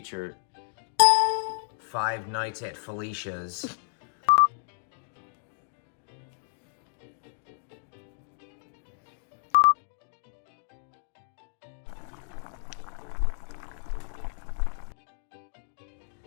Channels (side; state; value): right; silent; digital silence